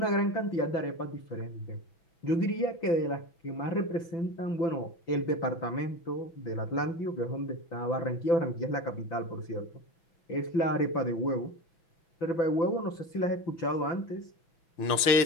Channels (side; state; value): right; late; 6.0 ms